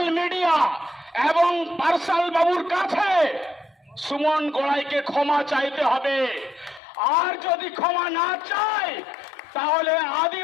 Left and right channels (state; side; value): drops out; right; at 6.8 s